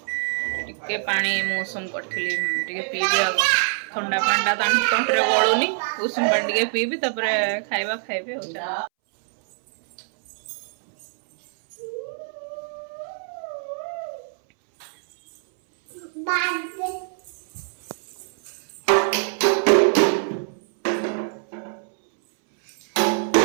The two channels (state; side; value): silent; left; 62 dB below the other